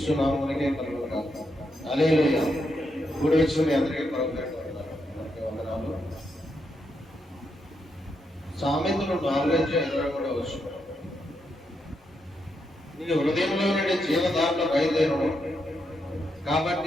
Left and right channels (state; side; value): normal; both; correlation 0.81